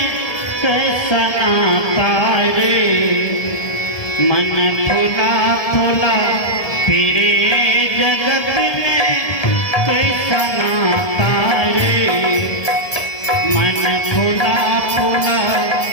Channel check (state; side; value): late; right; 1.7 ms